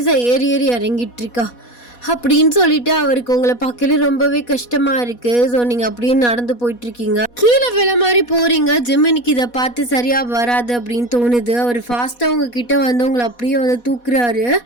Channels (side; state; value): right; late; 4.1 ms